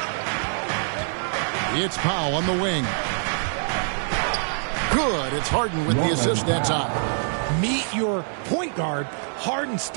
It's Powell on the wing. Good. It's Harden with the assist that time. Meet your point guard. Harden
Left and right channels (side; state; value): left; silent; 62 dB below the other